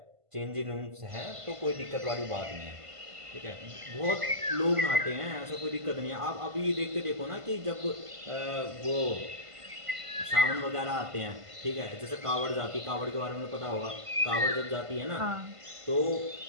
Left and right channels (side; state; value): left; late; 1.5 ms